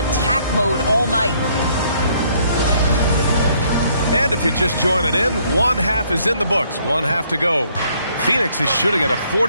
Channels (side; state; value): both; inverted; correlation -0.66